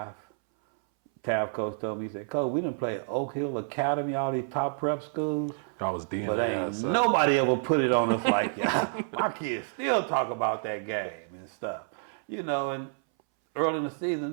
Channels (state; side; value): silent; left; 59 dB below the other